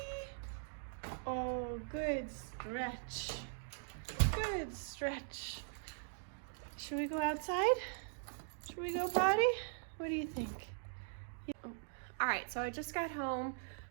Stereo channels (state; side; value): silent; left; digital silence